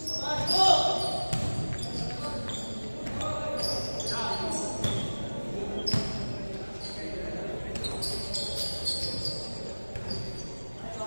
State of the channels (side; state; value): both; inverted; correlation -1.00